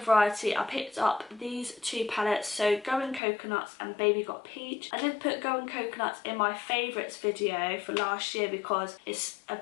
Variety, I picked up these two palettes, so Going Coconuts and Baby Got Peach. I did put Going Coconuts in my favourites video for last year because it's a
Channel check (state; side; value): drops out; right; at 3.2 s